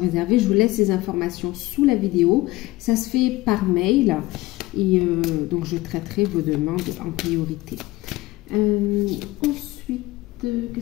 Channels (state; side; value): quieter; right; 18.9 dB